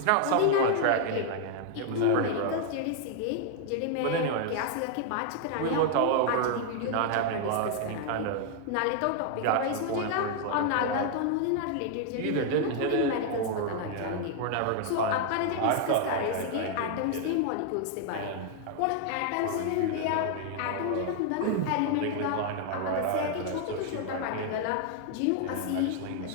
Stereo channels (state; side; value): different; both; correlation 0.00